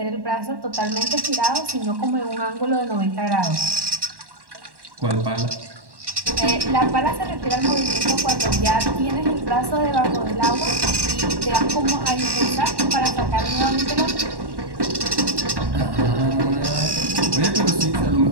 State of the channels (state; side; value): late; left; 1.1 ms